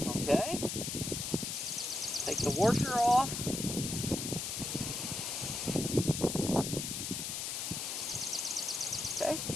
Okay. Take the washer off. Okay.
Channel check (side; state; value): left; noise; hiss, 3 dB below the sound